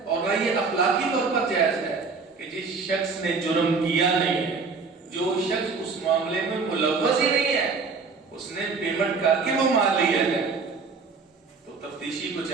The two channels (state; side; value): quieter; left; 4.7 dB